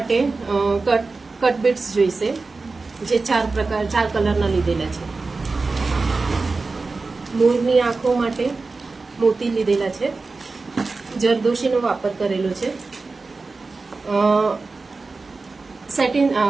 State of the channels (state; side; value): quieter; left; 3.8 dB